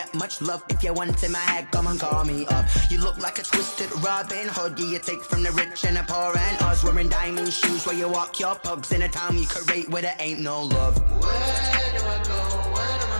much love. If you want in my head, come and call me up. You look like a twisted Robin Hood. You take from the rich and the poor and us. Wearing diamond shoes where you walk your pugs in a town you create where there ain't no love. Where do I go? When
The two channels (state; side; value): inverted; both; correlation -1.00